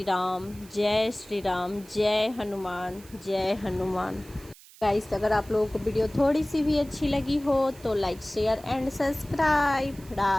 राम, जय श्री राम, जय हनुमान, जय हनुमान। गाइस, अगर आप लोगों को वीडियो थोड़ी सी भी अच्छी लगी हो तो like share and subscribe.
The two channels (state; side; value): noise; right; hiss, 22 dB below the sound